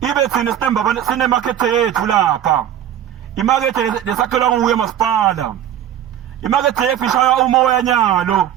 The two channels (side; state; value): left; quieter; 10.7 dB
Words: Ibe thina sinemakhethe yethu lapha, imakethe lesakhelwa nguye masipala, imakethe yethu ishaya umoya nyalo.